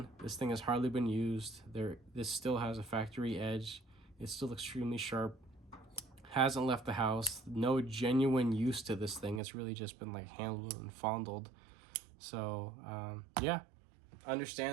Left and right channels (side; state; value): left; drops out; at 9.4 s